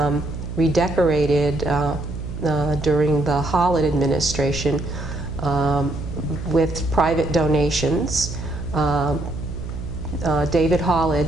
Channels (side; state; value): right; noise; hum, 8 dB below the sound